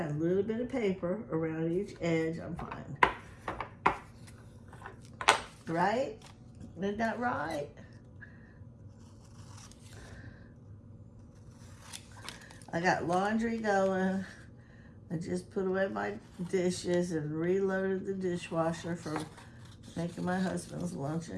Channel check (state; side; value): identical; both; correlation 1.00